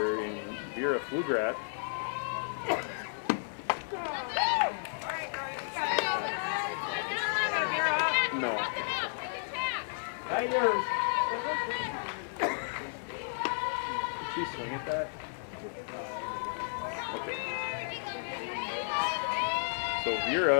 in Vera Flugrat. No. Did she swing at that? Okay. So Vera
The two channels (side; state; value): right; silent; 56 dB below the other